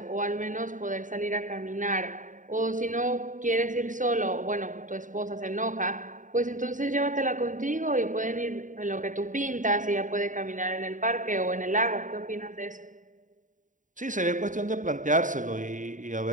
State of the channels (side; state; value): left; late; 0.37 ms